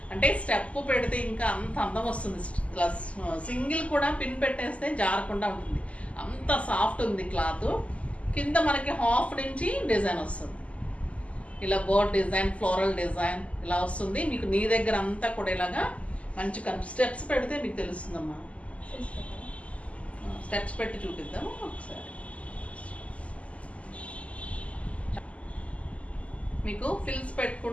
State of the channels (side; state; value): right; late; 0.065 ms